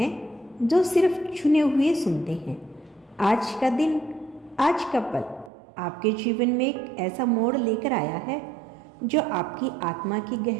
जो सिर्फ चुने हुए सुनते हैं। आज का दिन, आज का पल आपके जीवन में एक ऐसा मोड़ लेकर आया है जो आपकी आत्मा की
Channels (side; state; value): left; drops out; at 5.5 s